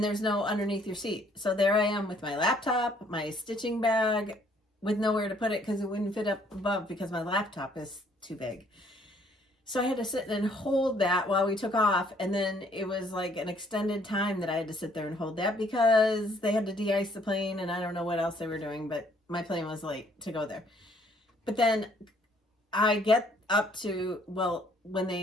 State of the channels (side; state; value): both; normal; correlation 0.63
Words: there's no underneath your seat. So there I am with my laptop, my stitching bag, with nowhere to put it because it wouldn't fit up above because my laptop is too big. So I had to sit and hold that while we took off. And then it was like an extended time that I had to sit there and hold that because they had to de-ice the plane and I don't know what else they were doing, but my plane was late to go there. But then I get up to, when